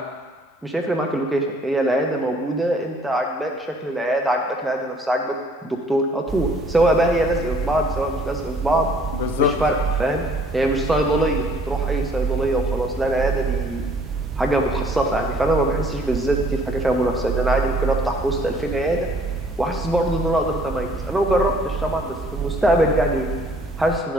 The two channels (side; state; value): both; normal; correlation 0.58